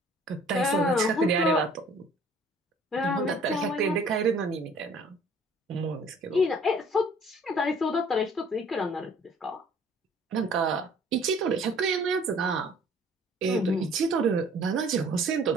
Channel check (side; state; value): both; normal; correlation 0.54